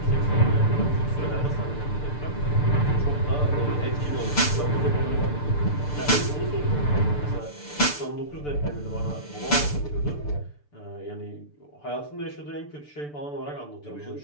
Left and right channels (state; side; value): late; right; 6.8 ms